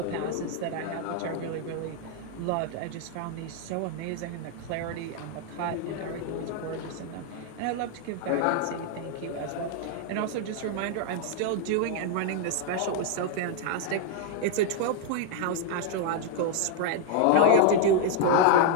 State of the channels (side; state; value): both; different; correlation 0.00